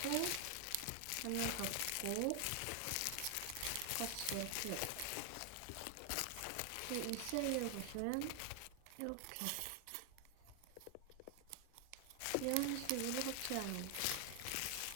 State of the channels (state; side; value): different; both; correlation 0.00